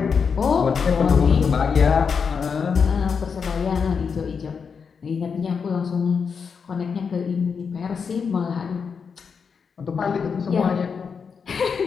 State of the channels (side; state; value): right; quieter; 6.0 dB